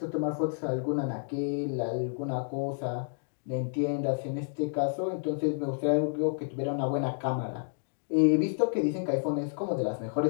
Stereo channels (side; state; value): right; silent; digital silence